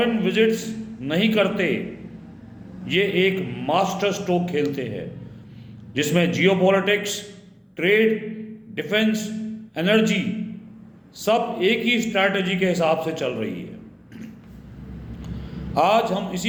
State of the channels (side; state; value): both; identical; correlation 1.00